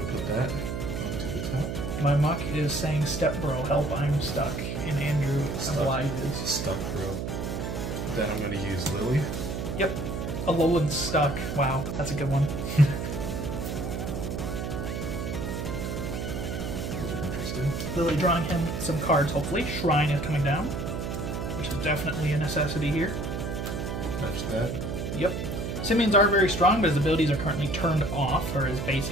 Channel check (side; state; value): right; noise; hum, 3 dB below the sound